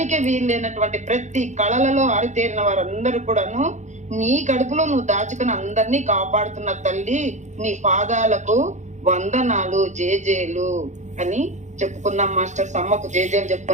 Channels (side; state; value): left; late; 0.34 ms